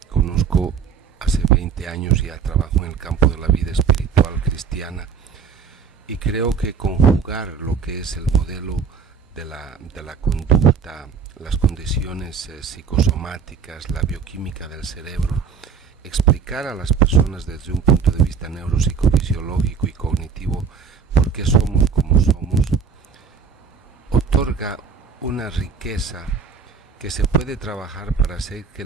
conozco hace 20 años ya trabajo en el campo de la vida espiritual cristiana, y creo que conjugar lo que es el modelo de la conducta, las condiciones psicosomáticas, la bioquímica del cerebro, explicar a las personas desde un punto de vista neuropsicofisiológico y cognitivo por qué somos como somos, otorga una riqueza que se puede trabajar para hacer que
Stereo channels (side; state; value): left; quieter; 6.2 dB